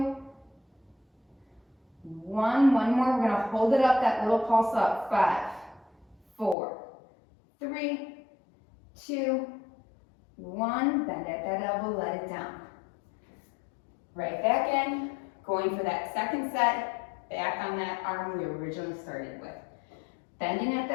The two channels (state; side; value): drops out; right; at 6.6 s